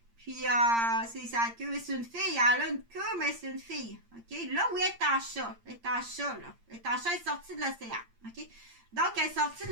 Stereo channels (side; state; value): left; late; 8.7 ms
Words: Puis, c'est sa queue. C'est une fille. Elle a une queue, mais c'est une fille. OK? Là où elle est en chat. Elle est en chat, là. Elle est en chat, elle est sortie de l'océan. OK? Donc, elle est sortie de